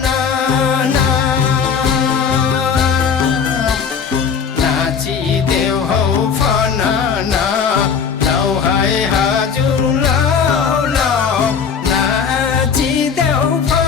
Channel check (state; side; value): quieter; right; 6.5 dB